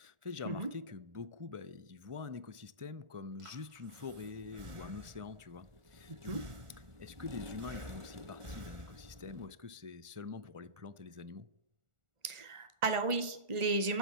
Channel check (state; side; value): late; left; 1.4 ms